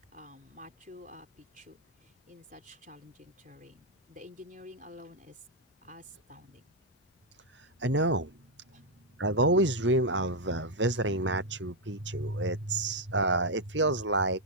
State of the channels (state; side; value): normal; both; correlation -0.01